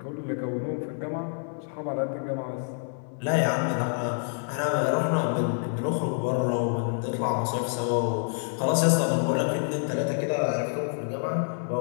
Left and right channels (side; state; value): right; silent; 60 dB below the other